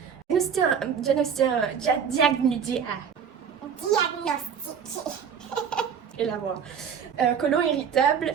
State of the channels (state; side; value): quieter; left; 7.3 dB